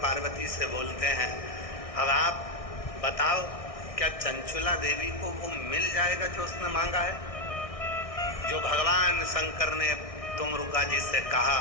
पार्वती से बोलते हैं, अब आप बताओ क्या चंचुला देवी को वो मिल जाएगा जो उसने मांगा है? जो भगवान शंकर ने तुमरुका जी से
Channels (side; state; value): right; late; 1.6 ms